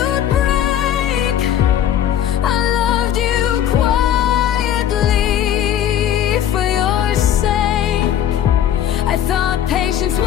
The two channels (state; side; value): quieter; right; 10.5 dB